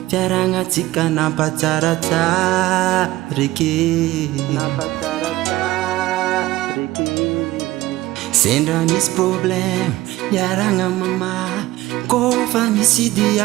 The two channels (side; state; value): left; quieter; 17.2 dB